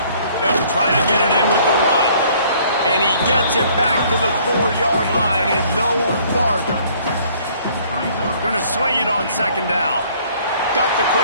They'll try to get it in with the run. And he gets it back to the 4-yard line and no farther. Going to swing it on 2nd down. Got the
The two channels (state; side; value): inverted; both; correlation -0.59